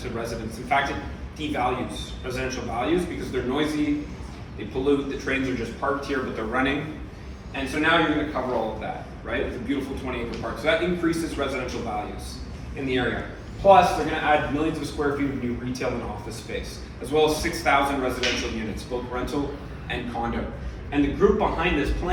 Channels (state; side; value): identical; both; correlation 1.00